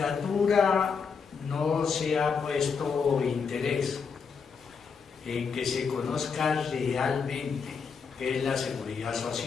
no se ha puesto interés en que se conozca realmente qué es la seguridad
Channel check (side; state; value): right; quieter; 5.8 dB